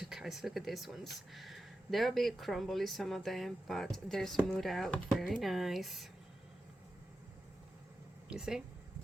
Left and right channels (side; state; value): both; normal; correlation 0.91